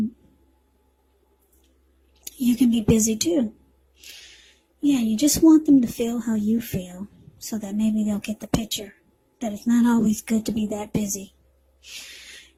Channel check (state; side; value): identical; both; correlation 1.00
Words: you can be busy too. Yeah, you just want them to feel how you feel, so that maybe they'll get the picture that it's not always good to be that busy.